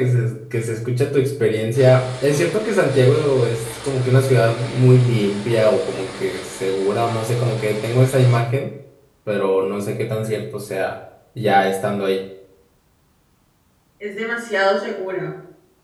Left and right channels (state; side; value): identical; both; correlation 1.00